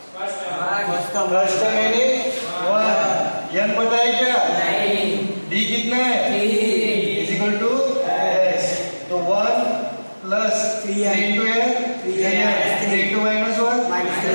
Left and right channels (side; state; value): both; inverted; correlation -1.00